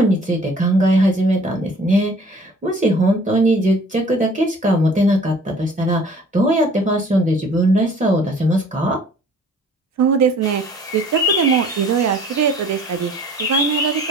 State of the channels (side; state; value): both; normal; correlation 0.51